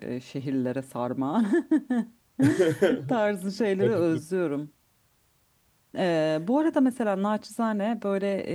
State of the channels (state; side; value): identical; both; correlation 1.00